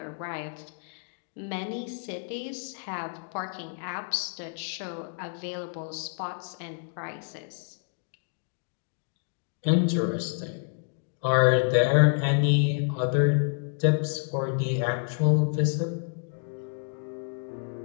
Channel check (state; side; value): silent; right; 59 dB below the other